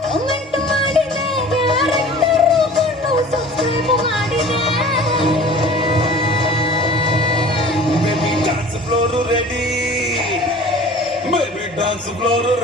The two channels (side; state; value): both; normal; correlation 0.44